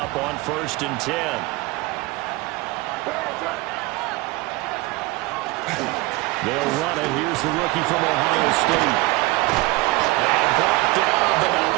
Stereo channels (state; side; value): quieter; left; 21.8 dB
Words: on 1st and 10. They'll run it. Here's the rookie from Ohio State. And brought down, but not